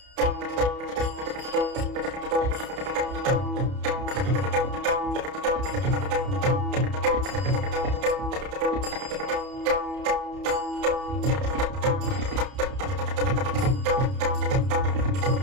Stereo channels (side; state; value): left; late; 30 ms